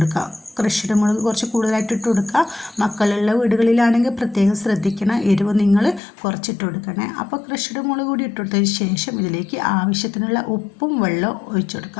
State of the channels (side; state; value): right; drops out; at 6.0 s